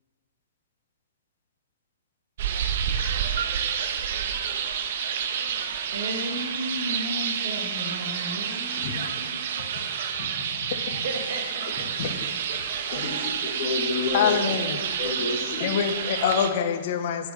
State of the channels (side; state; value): both; inverted; correlation -0.42